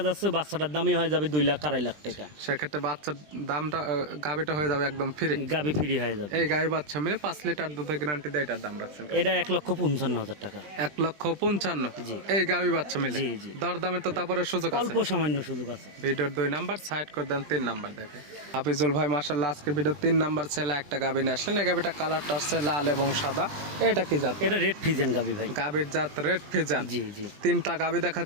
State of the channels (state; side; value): late; left; 20 ms